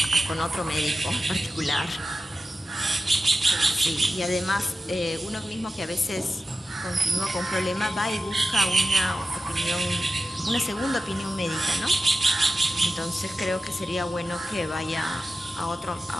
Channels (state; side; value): normal; both; correlation 0.93